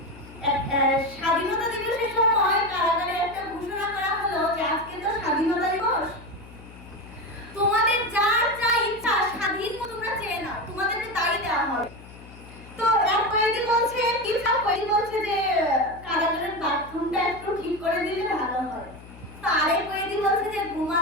স্বাধীনতা দিবসের সময় কারাগারে একটা ঘোষণা করা হলো যে আজকে তো স্বাধীনতা দিবস, তোমাদের যার যা ইচ্ছা স্বাধীন মতো তোমরা চেয়ে নাও, তোমাদেরকে তাই দেওয়া হবে। তো এক কয়েদি বলছে, কিছু কয়েদি বলছে যে কারাগারের বাথরুমটা একটু ঠিক করে দিলে ভালো হয়। তো আরেক কয়েদি বলছে যে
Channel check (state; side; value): noise; left; hum, 18 dB below the sound